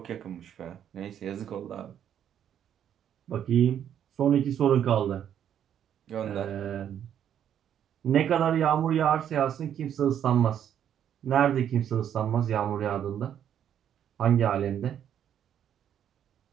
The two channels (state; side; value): quieter; left; 9.6 dB